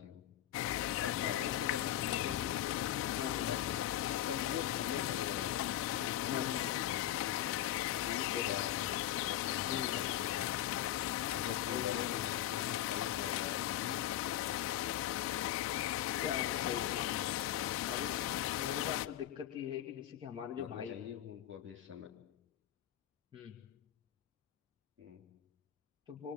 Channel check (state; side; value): quieter; right; 12.5 dB